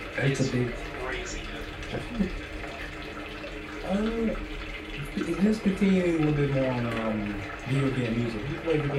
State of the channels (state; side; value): identical; both; correlation 1.00